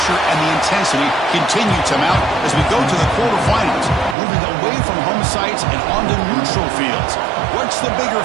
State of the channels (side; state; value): left; drops out; at 4.2 s